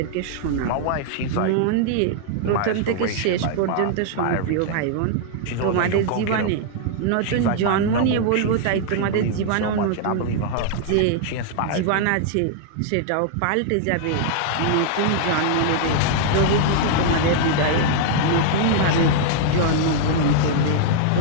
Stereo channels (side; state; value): both; different; correlation -0.01